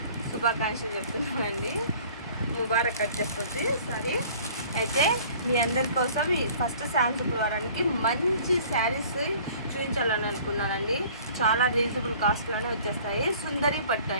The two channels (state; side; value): inverted; both; correlation -0.50